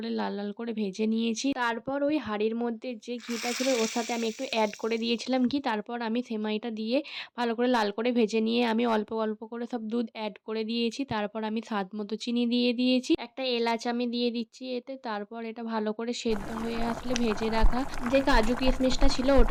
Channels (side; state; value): both; identical; correlation 1.00